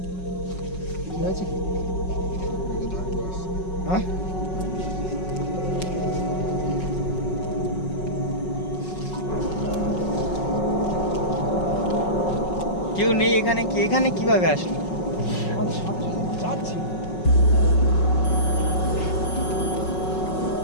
কি হয়েছে? হ্যাঁ কেউ নেই এখানে। কি এখানে কিভাবে আসলো? আমাদের সাথে সাথে যাচ্ছিল।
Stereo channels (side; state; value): right; late; 5.4 ms